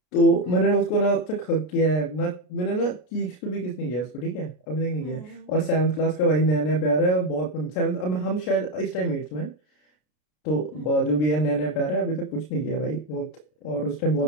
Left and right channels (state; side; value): late; right; 33 ms